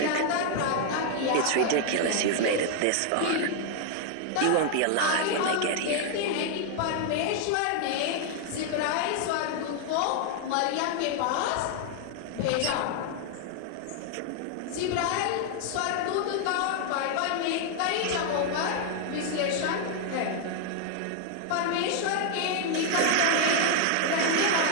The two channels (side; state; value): both; different; correlation 0.00